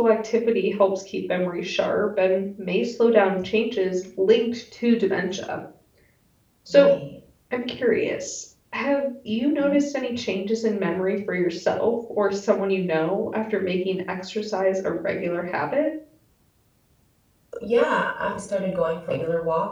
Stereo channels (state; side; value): identical; both; correlation 1.00